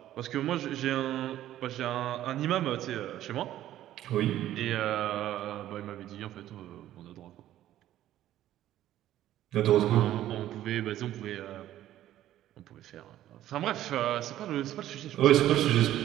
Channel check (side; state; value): left; quieter; 13.0 dB